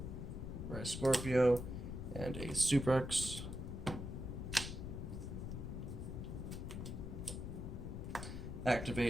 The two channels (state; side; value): noise; left; rumble, 5 dB below the sound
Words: Scorpio and a Suprex.